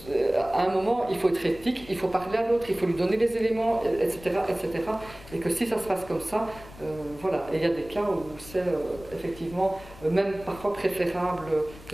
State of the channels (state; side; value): noise; left; rumble, 18 dB below the sound